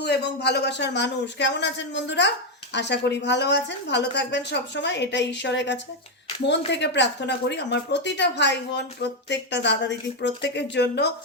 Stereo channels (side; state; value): both; normal; correlation 0.05